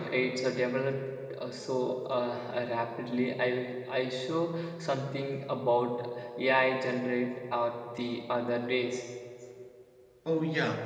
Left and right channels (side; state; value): both; identical; correlation 1.00